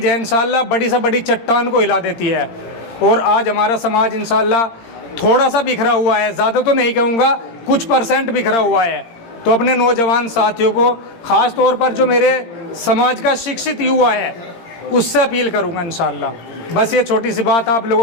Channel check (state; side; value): late; right; 17 ms